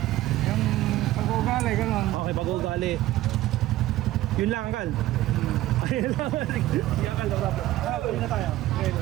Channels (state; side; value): quieter; left; 15.7 dB